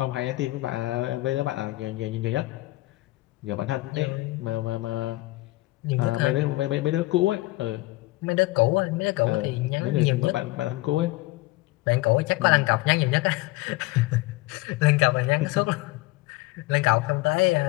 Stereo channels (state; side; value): quieter; right; 20.1 dB